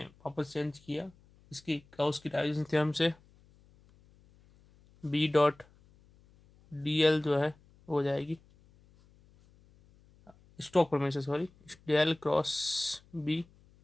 वापस चेंज किया इसकी गाउस की डाइवर्जेंस थ्योरम से। B डॉट DL जो है वो हो जाएगी स्टोक प्रमेय से, sorry, del cross B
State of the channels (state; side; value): noise; left; hum, 29 dB below the sound